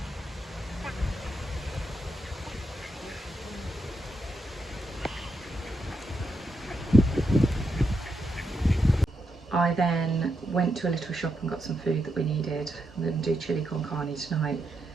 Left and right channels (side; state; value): both; normal; correlation 0.83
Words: I then went to a little shop and got some food that we needed. I'm going to do chili con carne tonight.